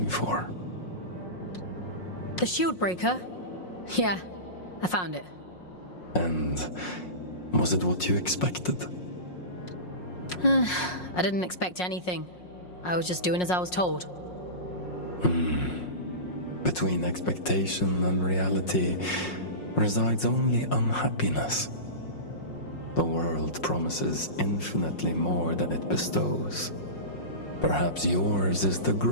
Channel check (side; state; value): right; late; 5.5 ms